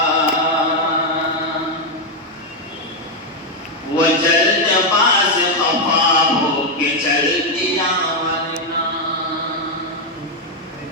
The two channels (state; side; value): normal; both; correlation 0.03